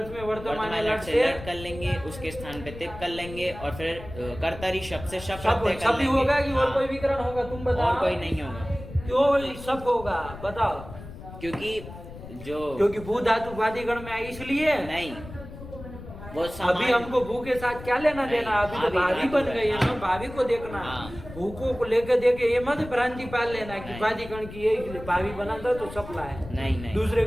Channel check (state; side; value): noise; left; rumble, 14 dB below the sound